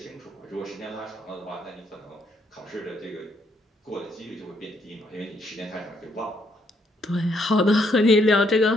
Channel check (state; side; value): normal; both; correlation 0.72